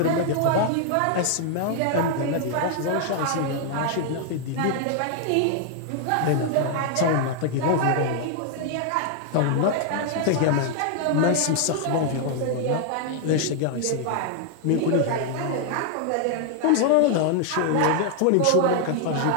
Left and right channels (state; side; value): different; both; correlation 0.00